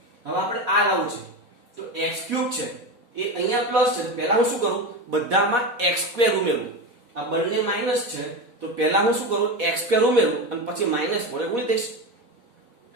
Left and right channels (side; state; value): left; late; 4.1 ms